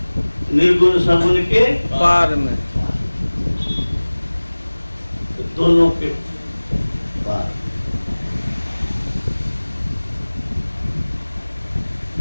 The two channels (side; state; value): both; inverted; correlation -1.00